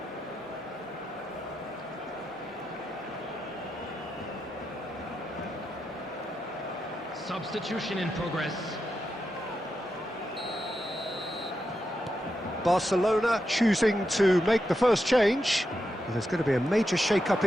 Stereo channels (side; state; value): both; normal; correlation 0.86